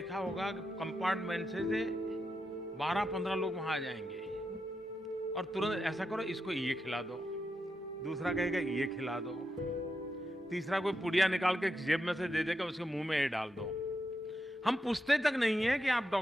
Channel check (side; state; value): both; normal; correlation 0.86